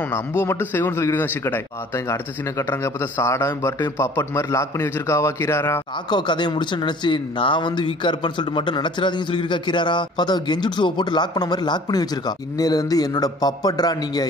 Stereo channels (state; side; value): normal; both; correlation 0.50